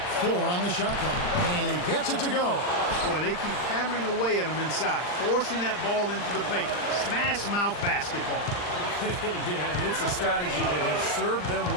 4 on the shot clock. And he gets it to go. Boy, they keep hammering away at him inside, forcing that ball into the paint. Smash mouth basketball. Yeah, it's a strategy that has served them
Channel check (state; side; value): late; right; 39 ms